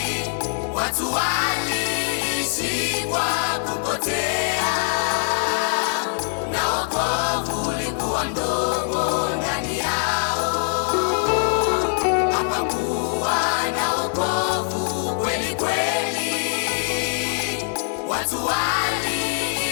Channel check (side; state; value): right; silent; 64 dB below the other